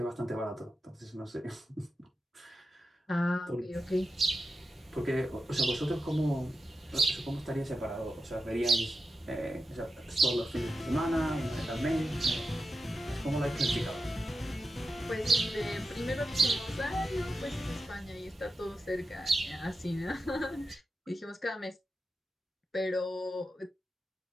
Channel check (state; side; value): normal; both; correlation 0.90